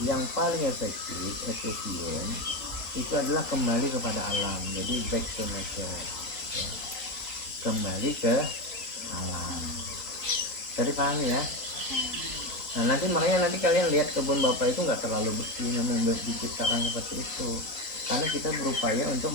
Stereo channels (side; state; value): right; late; 3.8 ms